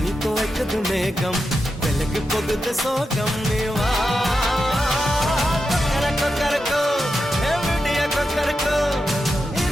துவைக்குது மேகம் வெளுக்கு போகுது சோகம் நீவா கொக்கரக்கோ எவ்வளிய கொக்கரக்கோ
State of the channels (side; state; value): both; normal; correlation 0.89